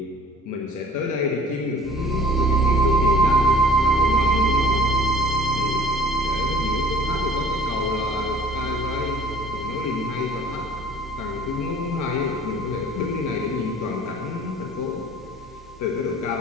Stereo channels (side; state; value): both; normal; correlation 0.50